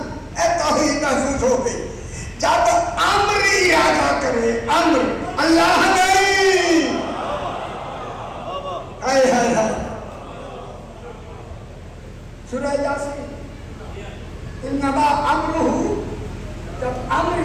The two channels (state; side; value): identical; both; correlation 1.00